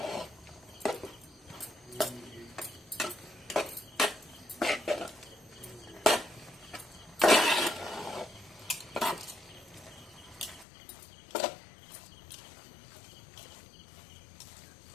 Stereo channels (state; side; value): drops out; right; at 10.7 s